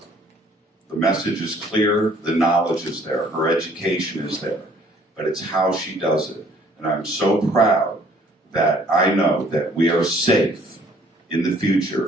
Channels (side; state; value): both; normal; correlation 0.59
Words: the message is clear, the knowledge is there, her education is there, but it's how she does it. And I'm so proud that I know that we are safe in the